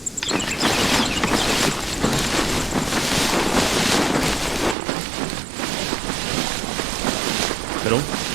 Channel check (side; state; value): left; drops out; at 4.8 s